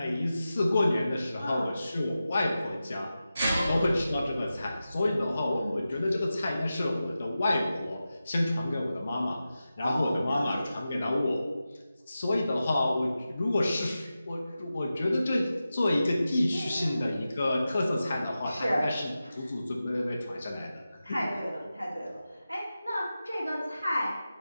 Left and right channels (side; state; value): both; inverted; correlation -0.93